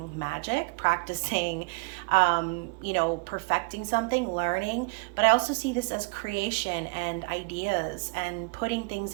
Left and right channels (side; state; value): left; quieter; 30.1 dB